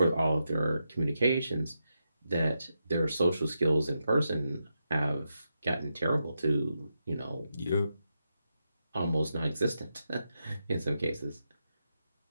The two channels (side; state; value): both; inverted; correlation -0.86